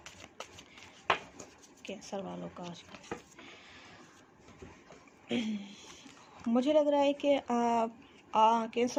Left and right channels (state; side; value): identical; both; correlation 1.00